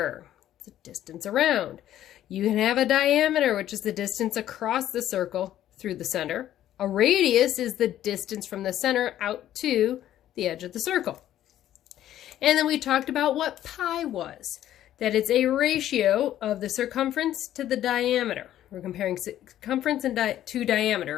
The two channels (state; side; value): quieter; right; 12.2 dB